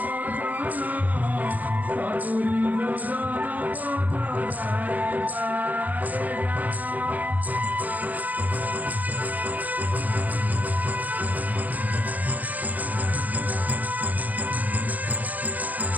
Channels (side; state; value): left; late; 0.080 ms